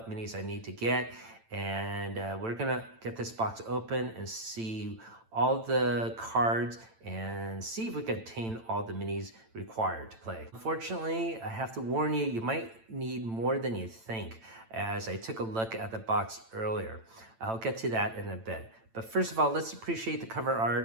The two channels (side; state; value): left; late; 8.9 ms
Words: minis I need to get. And we're going to get this box open and see all the cards and see if we can obtain all the minis required to play. Unfortunately, I have to warn you, you might need more than you think, as I took a look at the box earlier. I'll get to that in a bit. But first of all, let's appreciate the cover